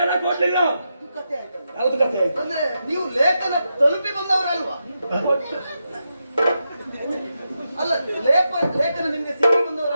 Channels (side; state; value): both; inverted; correlation -0.86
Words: ಕೊಡ್ಲಿಲ್ಲ? ಇದು ಕಥೆ ಆಯ್ತಲ್ಲ. ಯಾವ್ದು ಕಥೆ ಆಯ್ತು? ಅಂದ್ರೆ ನೀವು ಲೇಖನ ತಲುಪಿ ಬಂದವರಲ್ವಾ? ಅಲ್ಲ, ಲೇಖನ ನಿಮ್ಗೆ ಸಿಕ್ಕಿ